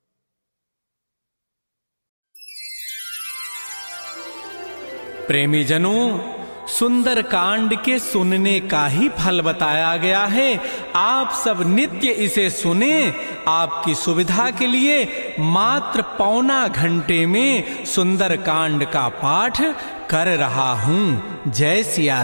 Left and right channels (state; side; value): inverted; both; correlation -1.00